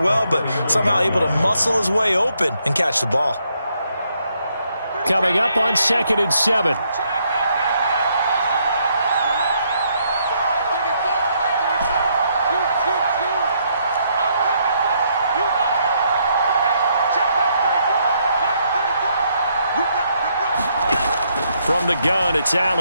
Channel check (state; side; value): inverted; both; correlation -0.73